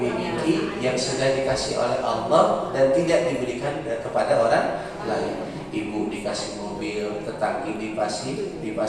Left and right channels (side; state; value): both; identical; correlation 1.00